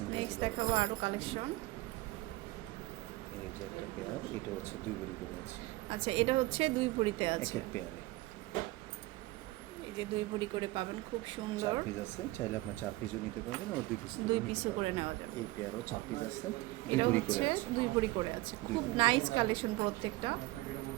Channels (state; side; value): quieter; left; 19.8 dB